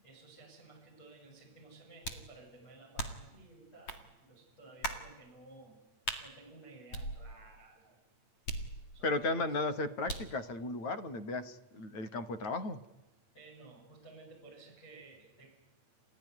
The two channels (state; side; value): late; right; 8.7 ms